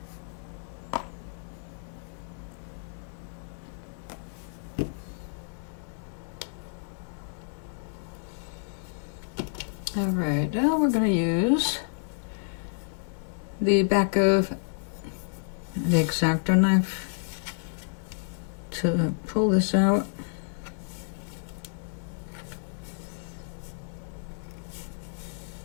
Alright, now we're going to use the back of the X-Acto knife to pull this out.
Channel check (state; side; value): silent; right; 58 dB below the other